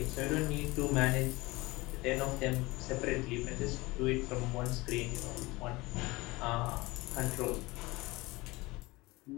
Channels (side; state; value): right; quieter; 22.0 dB